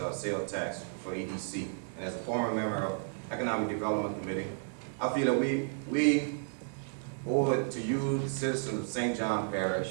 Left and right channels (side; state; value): left; silent; digital silence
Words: sales tax for EDC. And as a former member of Economic Development Committee, I feel that we owe it to you, the citizens of St. John